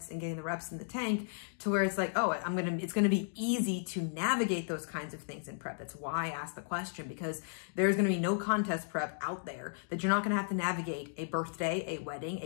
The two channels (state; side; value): silent; right; digital silence